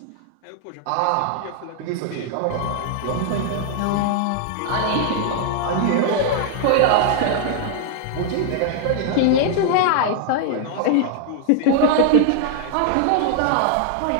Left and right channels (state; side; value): different; both; correlation 0.00